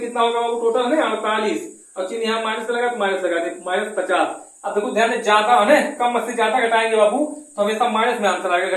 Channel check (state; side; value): identical; both; correlation 1.00